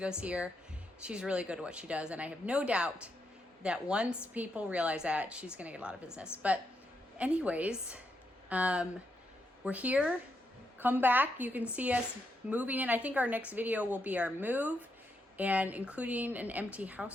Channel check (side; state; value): both; normal; correlation 0.81